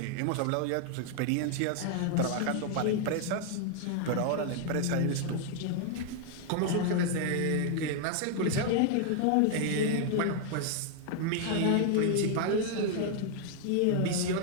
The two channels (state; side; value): different; both; correlation 0.00